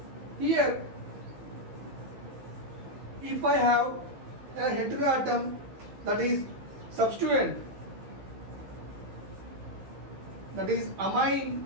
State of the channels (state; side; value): late; left; 15 ms